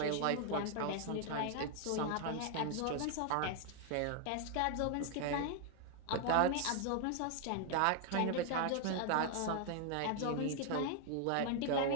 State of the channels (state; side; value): different; both; correlation 0.00